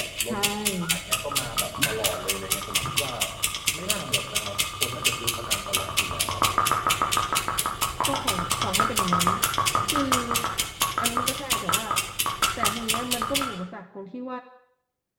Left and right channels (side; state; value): both; identical; correlation 1.00